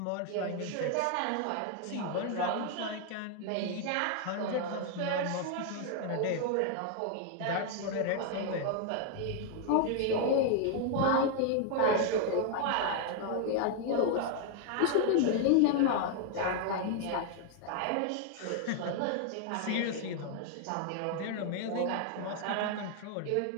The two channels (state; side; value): different; both; correlation 0.00